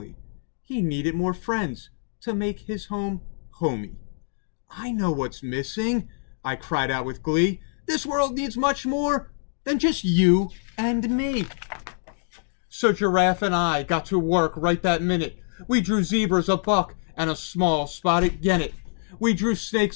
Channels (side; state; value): right; silent; digital silence